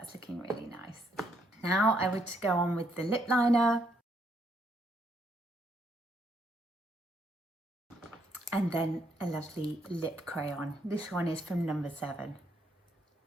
looking really nice. Now I would go on with the lip liner, and then a lovely lip crayon. This one is from number 7.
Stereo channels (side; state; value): both; normal; correlation 0.72